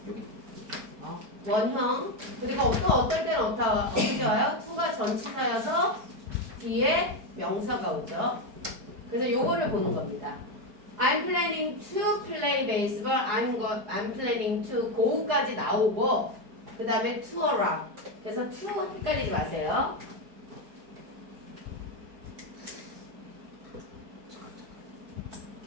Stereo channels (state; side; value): late; left; 4.7 ms